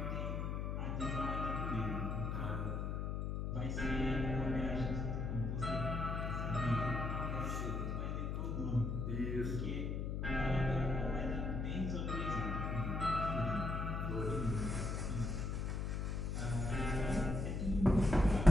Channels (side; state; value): left; noise; hum, 1 dB below the sound